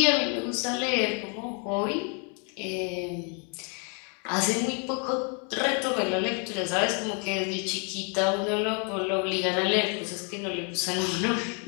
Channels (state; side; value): quieter; right; 37.4 dB